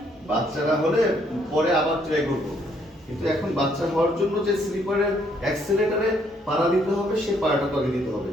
বাচ্চা না হলে পরে আবার ট্রাই করবো, কিন্তু এখন বাচ্চা হওয়ার জন্য যে স্লিপারের অ্যাক্সিলারেটরে পাড়া দিতে হবে সেই পাড়াটা তো আগে দিতে হবে।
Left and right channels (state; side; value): normal; both; correlation 0.69